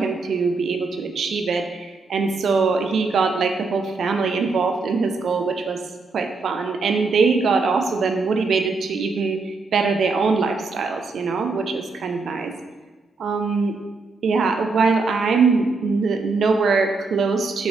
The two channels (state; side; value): quieter; left; 4.1 dB